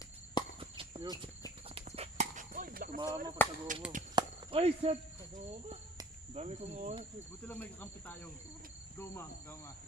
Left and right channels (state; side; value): normal; both; correlation 0.49